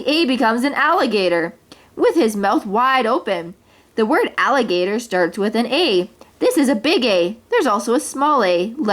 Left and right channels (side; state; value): both; identical; correlation 1.00